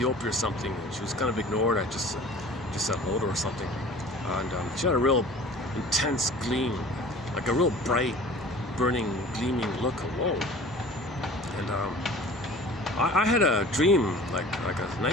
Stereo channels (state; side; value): normal; both; correlation 0.44